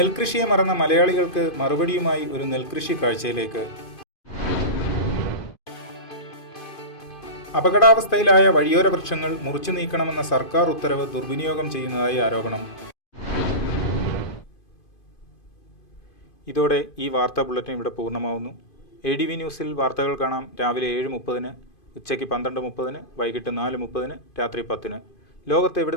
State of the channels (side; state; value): right; late; 2.5 ms